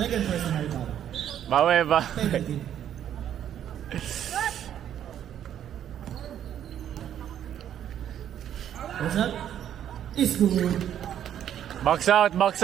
personal foul. Bawe ba? Penalty. What's up? Is good. Box out!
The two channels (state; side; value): quieter; left; 10.2 dB